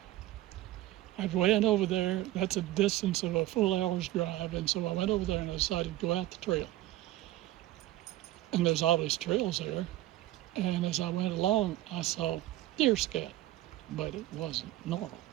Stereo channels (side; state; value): left; quieter; 15.7 dB